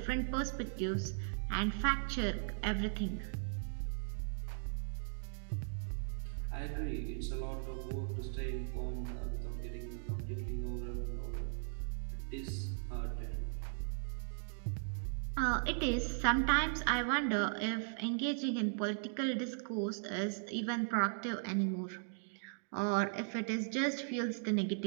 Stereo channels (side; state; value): left; silent; digital silence